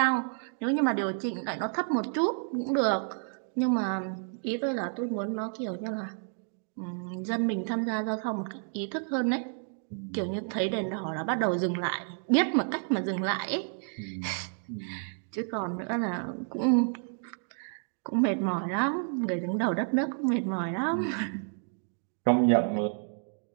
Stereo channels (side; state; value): left; silent; 58 dB below the other